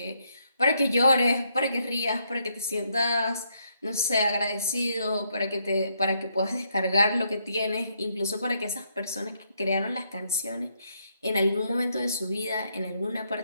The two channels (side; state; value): both; inverted; correlation -0.75